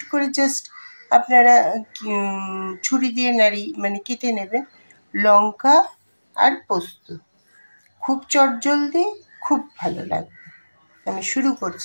করে জাস্ট আপনারা ছুরি দিয়ে কেটে নেবেন। লঙ্কা আর পোস্ত, খুব চটজলদি, খুব ভালো লাগবে। আমি শুরু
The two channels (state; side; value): inverted; both; correlation -1.00